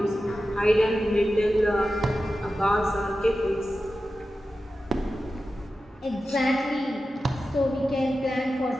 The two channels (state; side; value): normal; both; correlation 0.93